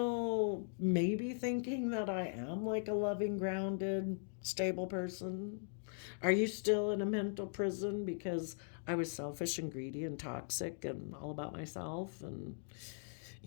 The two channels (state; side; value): silent; right; digital silence